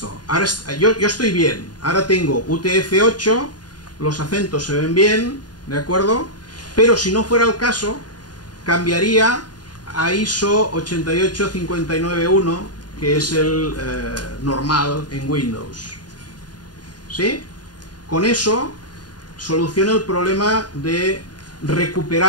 Ahora yo estoy bien. Ahora tengo UTF-8, los acentos se ven bien, ¿de acuerdo? Pero si no fuera el caso, cambiaría a ISO 88591, que es el normal en Windows. ¿Sí? Con eso soluciona el problema de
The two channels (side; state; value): right; late; 0.70 ms